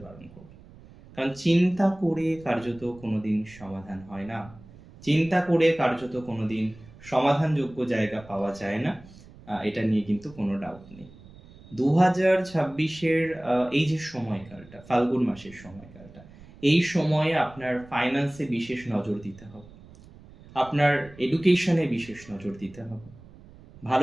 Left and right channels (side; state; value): right; noise; rumble, 21 dB below the sound